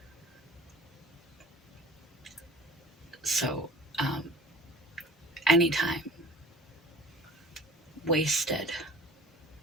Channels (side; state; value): both; normal; correlation 0.44